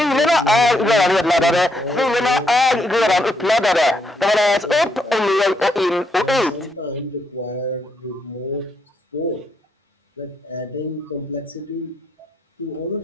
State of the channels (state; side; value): normal; both; correlation 0.76